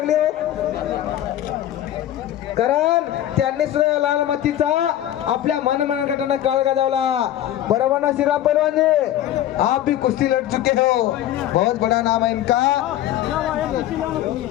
कारण त्यांनी सुद्धा लाल मातीचा आपल्या मनगटाने काळ गाजवला। बरोबर ना श्रीराम पैलवान जी, आप भी कुश्ती लड़ चुके हो, बहुत बड़ा नाम है इनका।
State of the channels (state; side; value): quieter; right; 12.6 dB